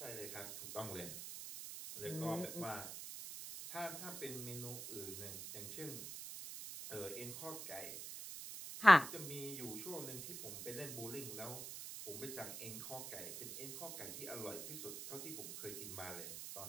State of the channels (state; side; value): noise; right; hiss, 7 dB below the sound